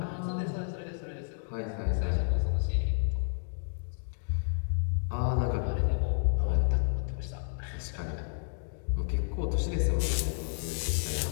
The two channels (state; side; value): silent; right; digital silence